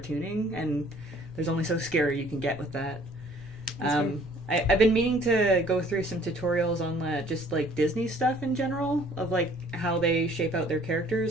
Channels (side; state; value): right; noise; rumble, 25 dB below the sound